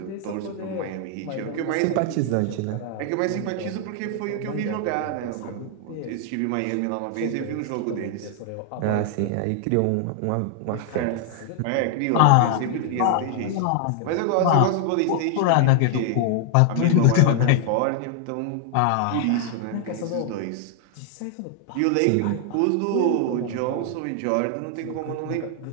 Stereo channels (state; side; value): different; both; correlation 0.00